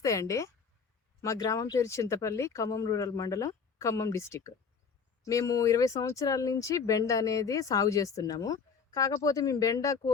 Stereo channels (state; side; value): quieter; right; 5.7 dB